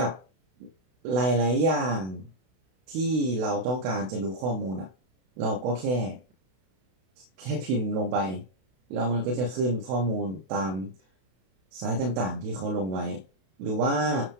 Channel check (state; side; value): late; left; 32 ms